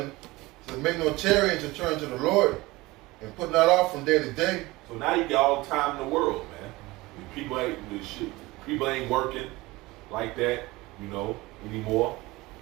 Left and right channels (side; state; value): left; quieter; 20.8 dB